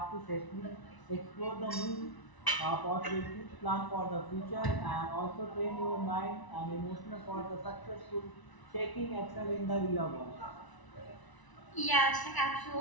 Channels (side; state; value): right; late; 1.0 ms